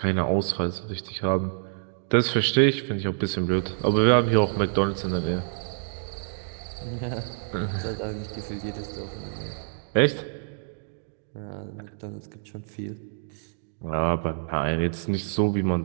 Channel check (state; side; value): silent; left; digital silence